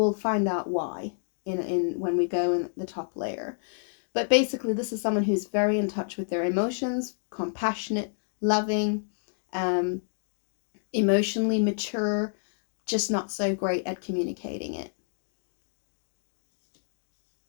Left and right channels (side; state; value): right; silent; digital silence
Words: find out why in when we go in the top layer. But basically, this is someone who's very in touch with their emotions, compassionate, loving, emotionally mature, just not so great at communicating it.